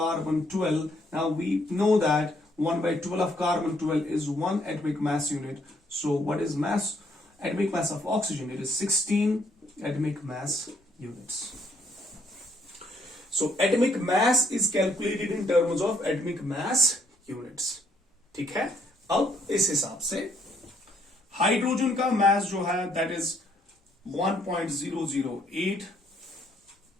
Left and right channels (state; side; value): normal; both; correlation 0.69